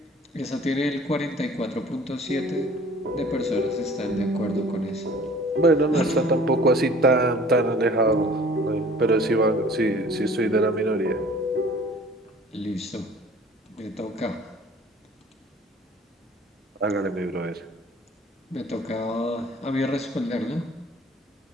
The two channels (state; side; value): normal; both; correlation 0.49